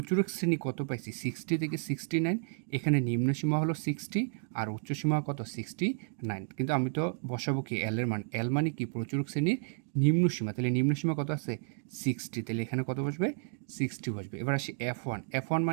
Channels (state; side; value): silent; left; digital silence